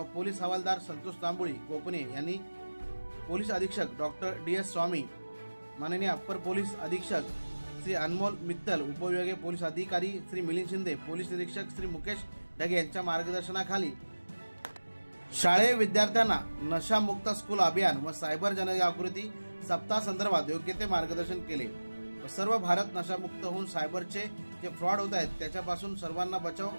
पोलीस हवालदार संतोष तांबुळी कोपणे यांनी, पोलीस अधीक्षक डॉक्टर DS स्वामी, माननीय अप्पर पोलीस अधीक्षक श्री अनमोल मित्तल, उपविभागीय पोलीस अधिकारी श्री मिलिंद शिंदे, पोलीस निरीक्षक श्री मुकेश ढगे यांच्या मार्गदर्शनाखाली शाळेय विद्यार्थ्यांना नशामुक्त स्कूल अभियान व सायबर जनजागृती सप्ताह संदर्भात योग्य ते मार्गदर्शन केले व सर्व भारत नशामुक्त होऊन सायबरचे जे फ्रॉड होत आहेत त्याच्यापासून सर्वांना बचाव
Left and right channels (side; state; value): both; inverted; correlation -1.00